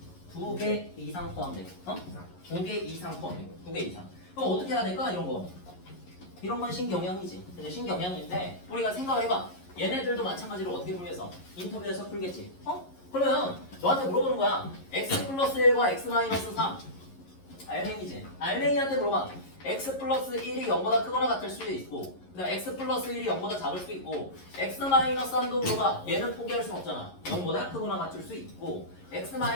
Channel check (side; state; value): right; late; 11 ms